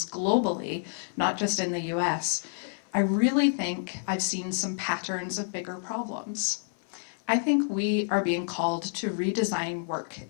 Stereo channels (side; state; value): right; silent; 58 dB below the other